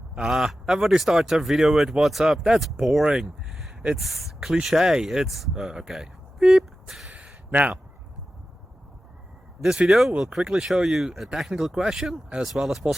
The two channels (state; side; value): normal; both; correlation 0.93